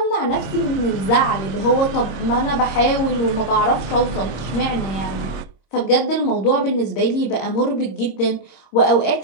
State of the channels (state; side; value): late; right; 26 ms